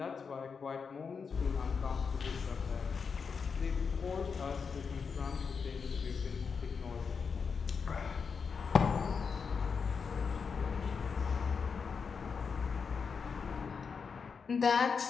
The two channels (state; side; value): quieter; right; 5.7 dB